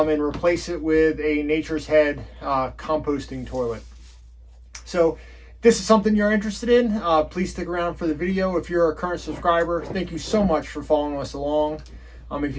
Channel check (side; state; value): both; identical; correlation 1.00